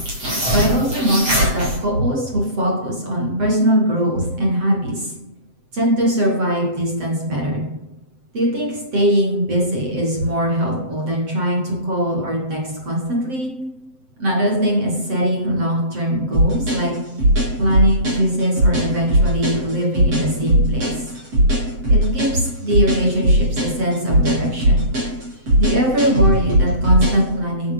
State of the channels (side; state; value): left; late; 7.7 ms